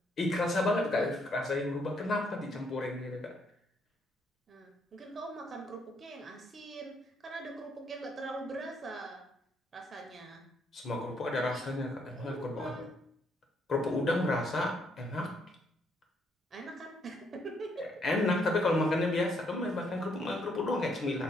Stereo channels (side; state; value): both; normal; correlation 0.71